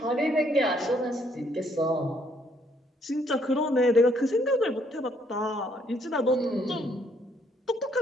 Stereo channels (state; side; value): normal; both; correlation 0.68